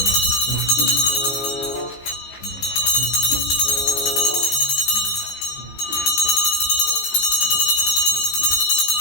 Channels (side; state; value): right; late; 15 ms